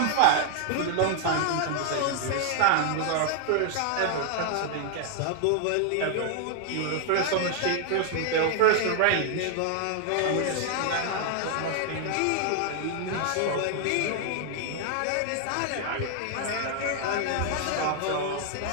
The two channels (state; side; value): different; both; correlation 0.00